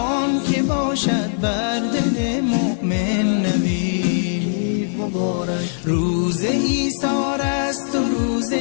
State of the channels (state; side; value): silent; right; digital silence